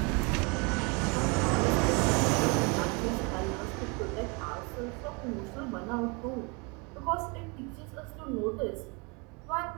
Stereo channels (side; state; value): left; quieter; 30.7 dB